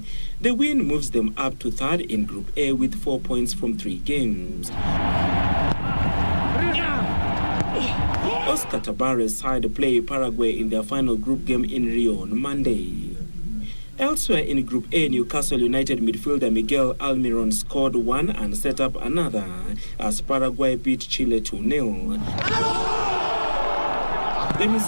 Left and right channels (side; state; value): both; inverted; correlation -1.00